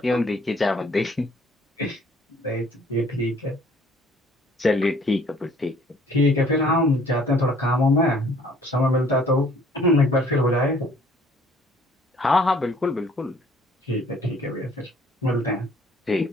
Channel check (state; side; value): normal; both; correlation 0.57